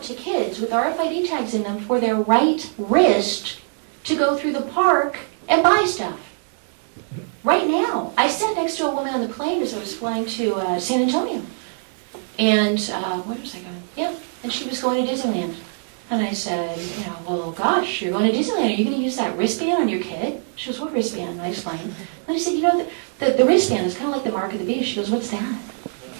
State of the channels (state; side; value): silent; left; 64 dB below the other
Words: to kids with RFID tags in them for their right wrist to go through the park and buy stuff. Right now, I sat next to a woman on the plane as I was flying to San Antonio. And where was I going? Yeah, and she was going to Disneyland. And I said, well, gosh, you're going to Disneyland. Are you going to use that wristband on your kid? She goes, what wristband? And I explained. And I said, the wristband is kind of like the mark of the beast. She goes, what's that?